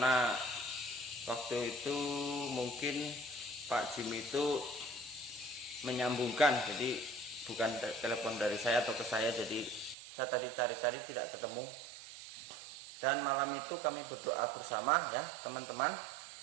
waktu itu mungkin Pak Jimmy itu menyambungkan, jadi bukan telepon dari saya atau ke saya, jadi saya tadi cari-cari tidak ketemu. Dan malam itu kami berdoa bersama ya teman-teman,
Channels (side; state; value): left; drops out; at 10.0 s